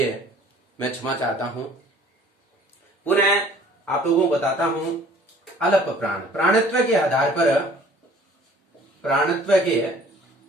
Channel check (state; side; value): normal; both; correlation 0.52